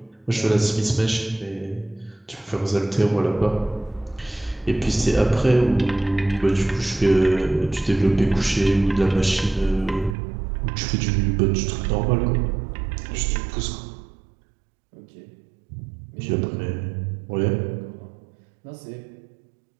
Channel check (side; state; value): left; drops out; at 10.2 s